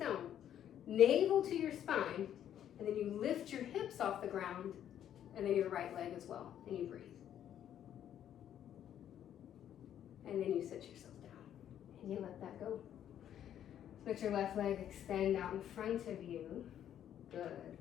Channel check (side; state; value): right; quieter; 10.4 dB